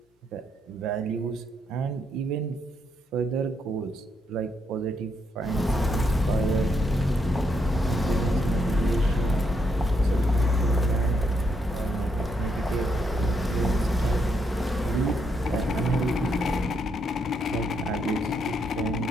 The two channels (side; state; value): both; normal; correlation 0.77